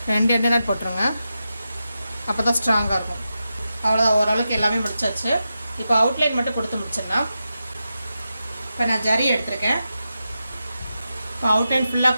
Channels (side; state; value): both; inverted; correlation -0.90